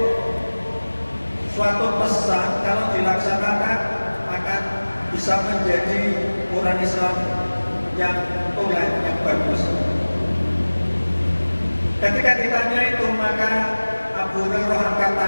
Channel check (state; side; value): inverted; both; correlation -1.00